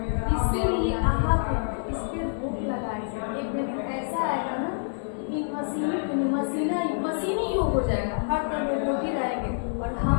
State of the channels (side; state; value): right; silent; 60 dB below the other